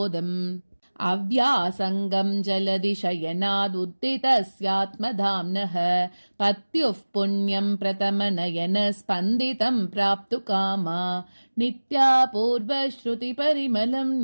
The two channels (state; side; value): inverted; both; correlation -1.00